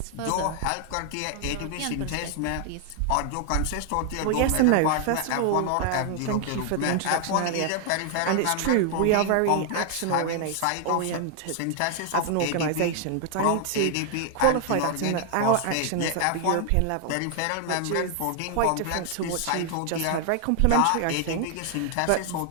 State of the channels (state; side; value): different; both; correlation 0.00